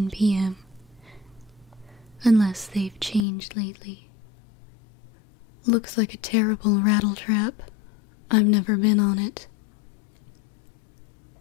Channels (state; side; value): drops out; right; at 3.2 s